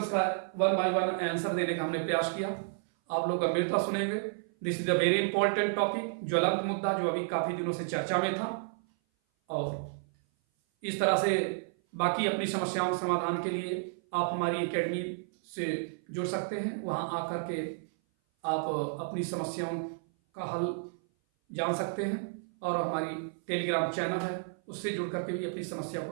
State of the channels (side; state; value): left; silent; 56 dB below the other